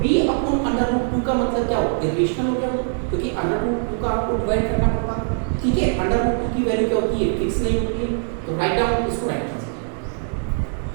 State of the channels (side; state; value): left; silent; digital silence